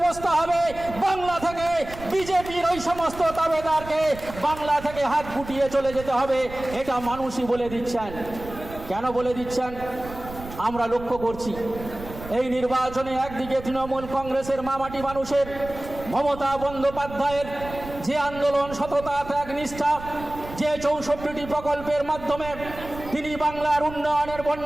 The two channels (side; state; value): right; noise; rumble, 13 dB below the sound